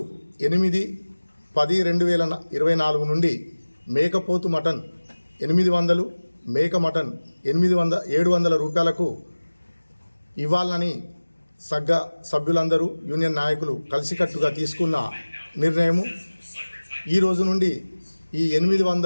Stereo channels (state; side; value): inverted; both; correlation -1.00